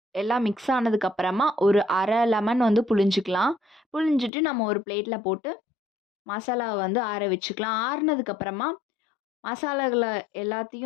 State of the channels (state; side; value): drops out; right; at 4.3 s